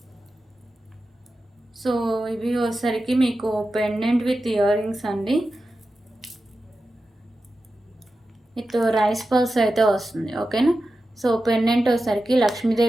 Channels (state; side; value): normal; both; correlation 0.92